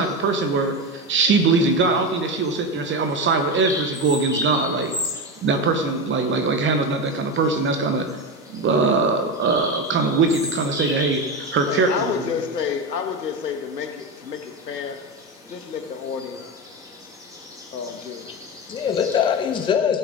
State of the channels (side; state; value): both; normal; correlation 0.17